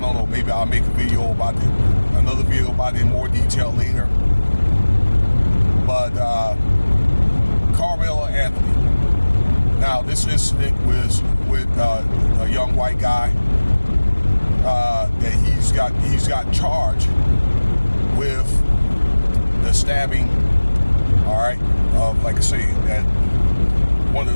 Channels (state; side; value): inverted; both; correlation -1.00